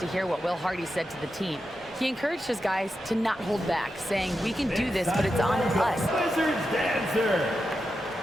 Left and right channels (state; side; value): normal; both; correlation 0.89